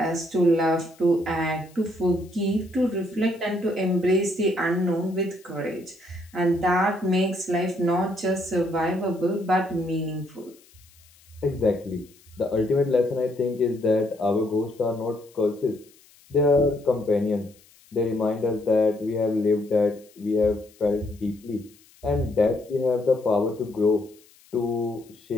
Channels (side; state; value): left; noise; hiss, 28 dB below the sound